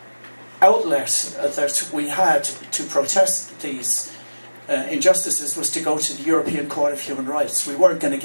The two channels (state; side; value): inverted; both; correlation -1.00